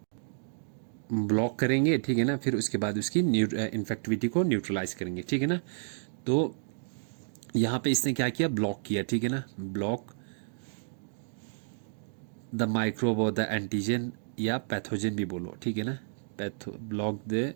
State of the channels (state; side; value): silent; left; digital silence